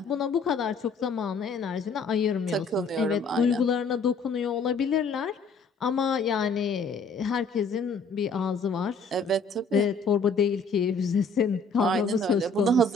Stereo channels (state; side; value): quieter; right; 3.8 dB